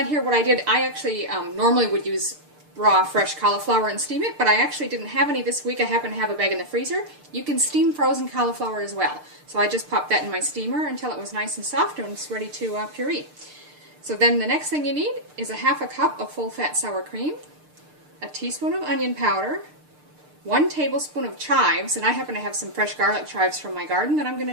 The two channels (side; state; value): left; late; 6.7 ms